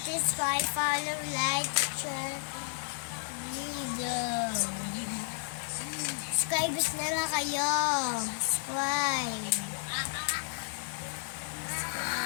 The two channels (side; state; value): right; silent; digital silence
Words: is my follow, like, share video. Subscribers na lang kayo. Subscribe.